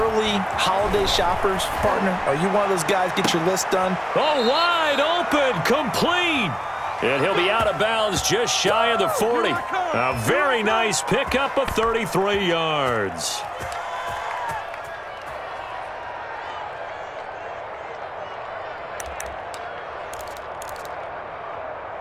holiday shoppers, partner? Are you one of those guys get your list done? Oh, wide open, complete. And he'll be out of bounds just shy of the 40. A very nice pickup of 33 yards.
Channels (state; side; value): identical; both; correlation 1.00